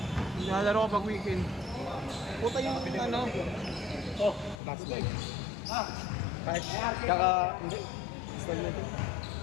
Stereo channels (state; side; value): drops out; right; at 4.6 s